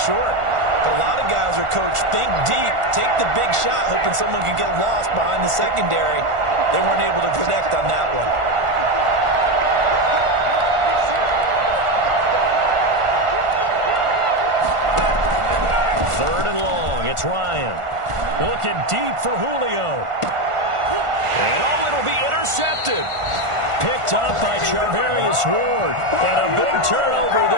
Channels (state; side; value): late; left; 1.5 ms